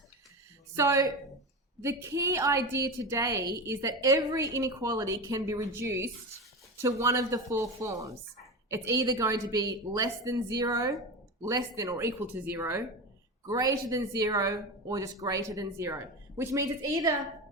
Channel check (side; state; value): both; normal; correlation 0.23